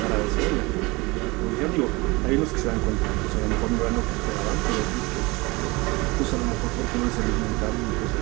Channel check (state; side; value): quieter; left; 24.0 dB